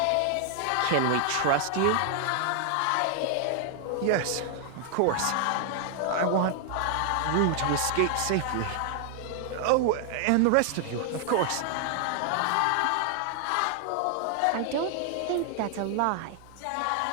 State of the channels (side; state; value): both; different; correlation 0.00